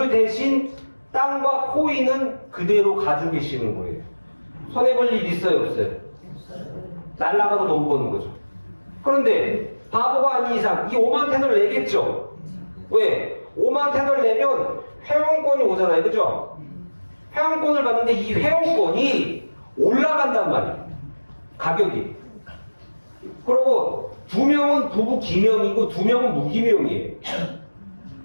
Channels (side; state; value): both; inverted; correlation -1.00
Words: 대신 땅과 코인은 그대로 가지고 계시는 거예요. 손해볼 일 있어요? 없어요? 날라가도 돈 버는 거죠. 그런데 바보가 아닌 이상 이 5만 테더를 내겠죠? 왜? 5만 테더를 내면 회원권이 오잖아요. 그죠? 회원권을 받는데 이 회원권이 올라간단 말이에요. 가격이. 그리고 2명은 부부 기명이고 2명은 무기명이에요.